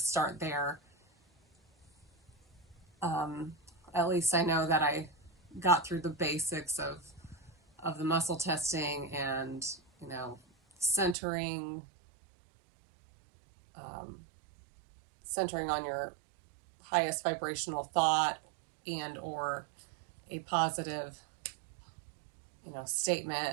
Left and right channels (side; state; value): left; drops out; at 11.2 s